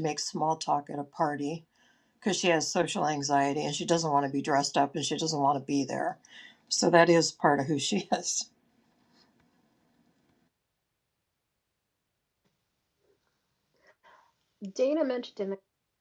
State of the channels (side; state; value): both; identical; correlation 1.00